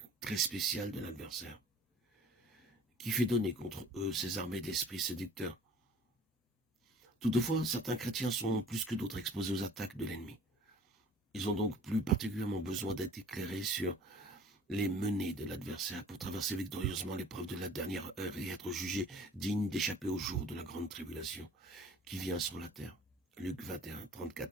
très spéciales de l'adversaire, qui fait donner contre eux ses armées d'esprits séducteurs. Toutefois, certains chrétiens sont plus que d'autres exposés aux attaques de l'ennemi. Ils ont donc plus particulièrement besoin d'être éclairés sur les menées de l'adversaire pour traverser victorieusement l'épreuve de la dernière heure et être jugés dignes d'échapper au jour de la grande tribulation qui vient sur la terre. Luc 21,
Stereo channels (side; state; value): both; normal; correlation 0.48